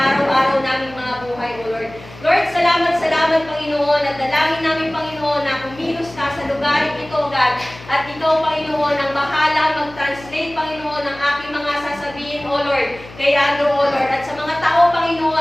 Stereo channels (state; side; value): noise; left; hum, 18 dB below the sound